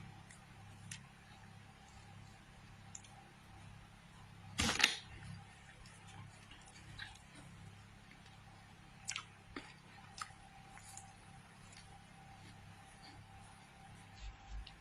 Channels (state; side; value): identical; both; correlation 1.00